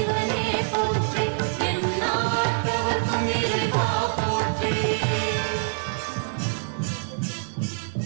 போற்றி எந்நாட்டவர்க்கும் இறைவா போற்றி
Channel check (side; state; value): left; silent; digital silence